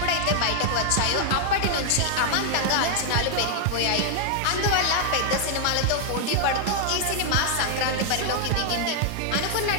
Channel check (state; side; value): different; both; correlation 0.00